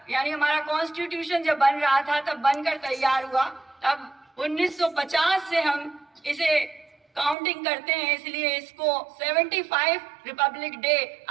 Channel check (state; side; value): drops out; left; at 7.4 s